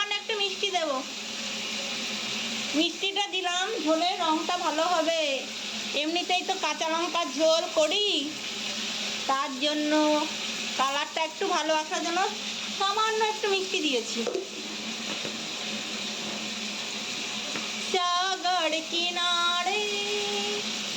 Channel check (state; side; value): identical; both; correlation 1.00